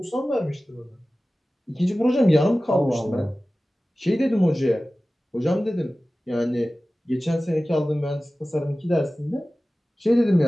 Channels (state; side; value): normal; both; correlation 0.96